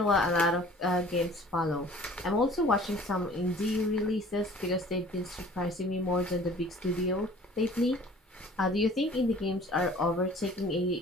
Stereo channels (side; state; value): both; normal; correlation 0.49